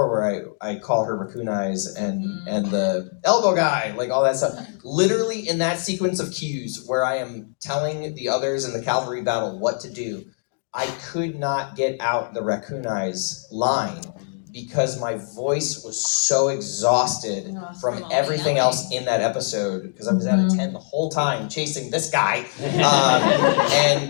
where I call her raccoon eyes and the elbow guy, like all that stuff. Literally in that sequence of cues where I am telling the others in the cavalry battle what to do, I could not get out the raccoon eyes line because my voice was so exhausted from everything else in that episode because I was at a 10 the whole time chasing this guy.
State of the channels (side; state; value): right; silent; digital silence